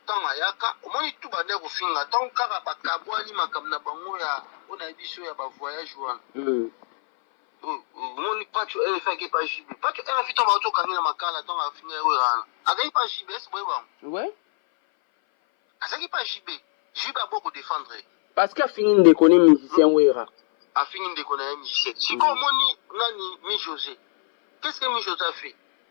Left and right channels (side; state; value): right; silent; 58 dB below the other